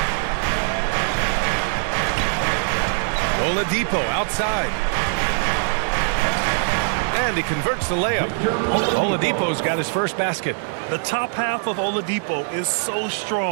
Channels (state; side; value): silent; left; digital silence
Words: Oladipo outside. And he converts the layup. Oladipo's got his first basket. The top half of Oladipo is so